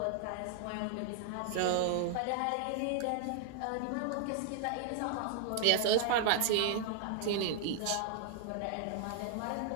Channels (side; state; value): both; different; correlation -0.01